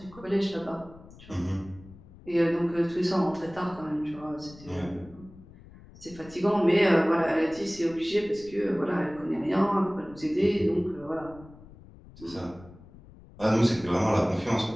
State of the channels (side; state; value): left; noise; rumble, 21 dB below the sound